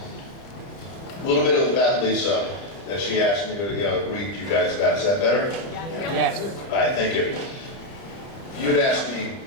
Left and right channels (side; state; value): right; late; 30 ms